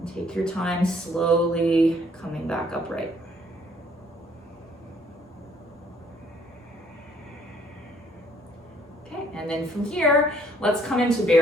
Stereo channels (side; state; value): both; normal; correlation 0.63